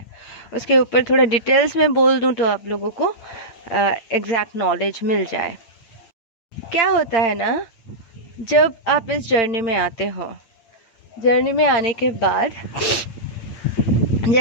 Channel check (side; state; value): right; late; 8.8 ms